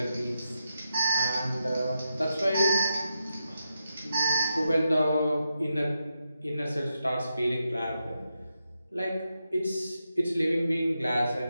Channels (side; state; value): both; inverted; correlation -0.86